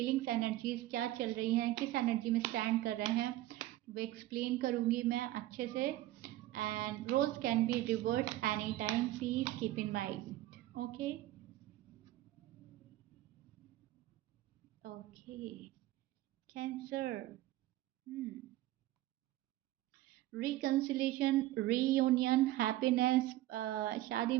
एनर्जीज क्या चल रही हैं, किस एनर्जी में स्टैंड कर रहे हैं, वो एक्सप्लेन करूँगी मैं अच्छे से। And roles can be reverse any time, please keep in mind. Okay okay Cancer, reconciliation, reunion, happiness, शादी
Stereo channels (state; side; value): quieter; left; 15.7 dB